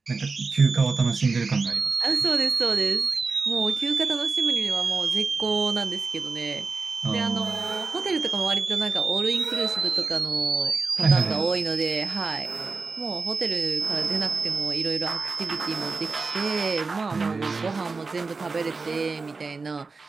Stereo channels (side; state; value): left; quieter; 4.2 dB